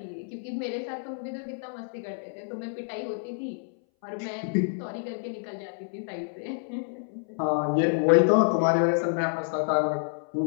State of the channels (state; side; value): silent; right; 59 dB below the other